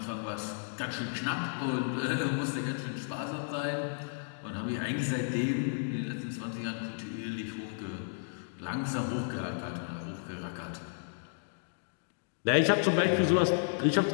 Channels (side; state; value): right; silent; digital silence